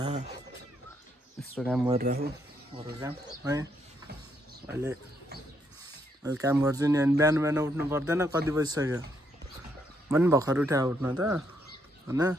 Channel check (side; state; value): both; normal; correlation 0.75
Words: यस्तो काम गरिरहेको घरको काम है। अहिले काम गर्छु नि। अनि बिहान बिहान उठ्नु पर्दैन, कति बजिसक्यो, म पनि भर्खर उठ्या उठ्न त होइन।